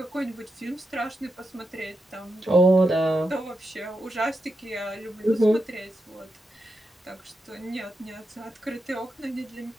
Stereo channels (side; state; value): both; normal; correlation 0.86